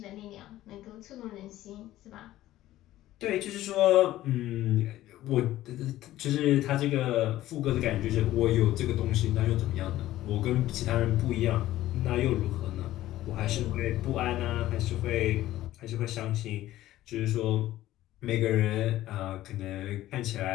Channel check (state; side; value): quieter; right; 14.8 dB